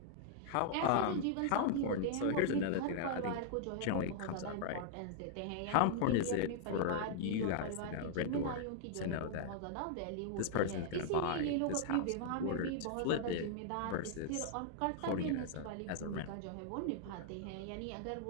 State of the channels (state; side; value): different; both; correlation -0.01